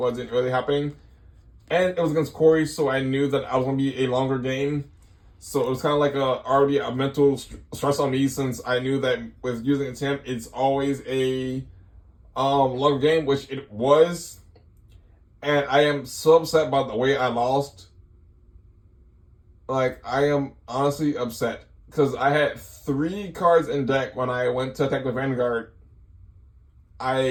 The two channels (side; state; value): both; identical; correlation 1.00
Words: really happening. And it was against Corey, so I knew that I was going to be a longer game. So it was kind of like already a mental stress on me, since I knew that with using a temp, it's always a longer game, which it was. And I am so upset by the way I lost. Like, I am honestly upset. Because I had 3 cards in deck when I went to attack with Vanguard.